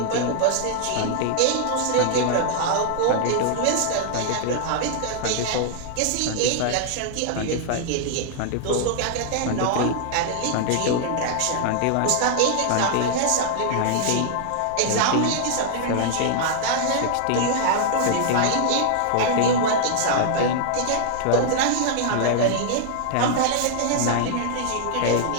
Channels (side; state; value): both; different; correlation -0.01